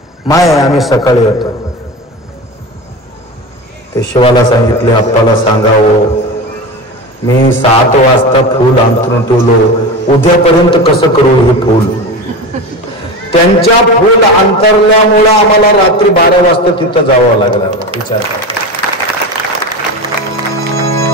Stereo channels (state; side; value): normal; both; correlation 0.26